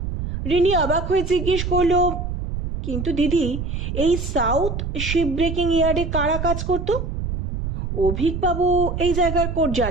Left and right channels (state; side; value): noise; right; rumble, 4 dB below the sound